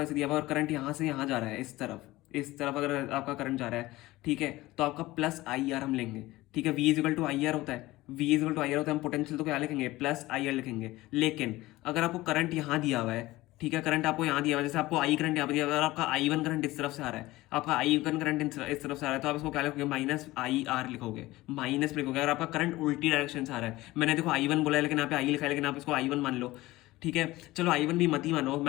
ऐसे दिया हुआ है और करंट यहाँ से यहाँ जा रहा है, इस तरफ अगर आपका करंट जा रहा है, ठीक है, तो आपका प्लस IR हम लेंगे। ठीक है, V इजिकल टू IR होता है, V इजिकल टू IR होता है। हम पोटेंशियल तो क्या लिखेंगे, प्लस IR लिखेंगे। लेकिन अगर आपको करंट यहाँ दिया हुआ है, ठीक है, करंट आपको यहाँ दिया हुआ है, जैसे आपको I करंट यहाँ पर दिया हुआ है, और आपका I1 करंट इस तरफ से आ रहा है, आपका I1 करंट इस तरफ से आ रहा है, तो आप इसको क्या लिखोगे, माइनस IR लिखोगे, माइनस लिखोगे। अगर आपका करंट उल्टी डायरेक्शन से आ रहा है, मैंने देखो I1 बोला है लेकिन यहाँ पे I लिखा है, लेकिन आप इसको I1 मान लो। ठीक है, चलो I1 भी मत ही मानो,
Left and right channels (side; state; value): right; quieter; 18.5 dB